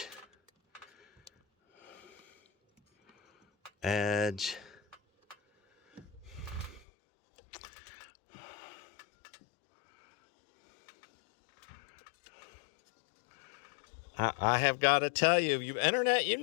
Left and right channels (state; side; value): drops out; right; at 6.9 s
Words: Edge. I have got to tell you, internet, you